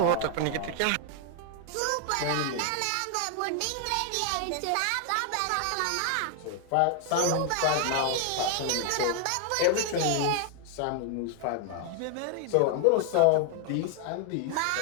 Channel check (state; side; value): different; both; correlation 0.00